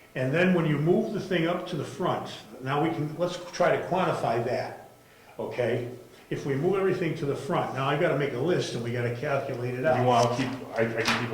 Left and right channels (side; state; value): both; identical; correlation 1.00